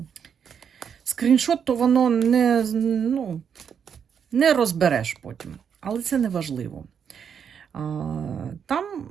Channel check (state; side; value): quieter; left; 7.5 dB